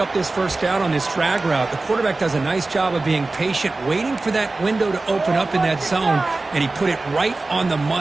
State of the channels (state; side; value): quieter; left; 3.3 dB